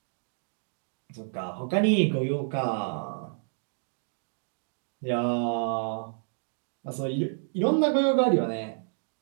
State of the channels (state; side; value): silent; left; digital silence